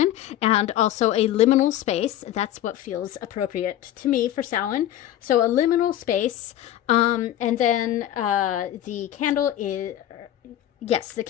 and also a liminal space. That's what feels appropriate to me for Samhain. So a liminal space, and then the candle is... Yes, the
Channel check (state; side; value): quieter; right; 12.5 dB